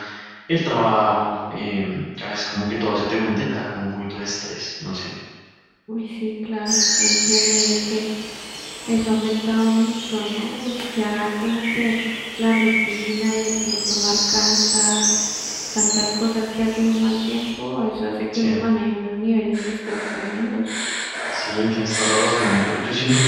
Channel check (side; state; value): both; identical; correlation 1.00